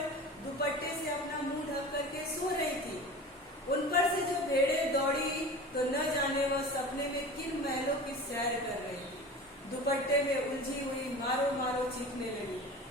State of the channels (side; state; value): both; normal; correlation 0.35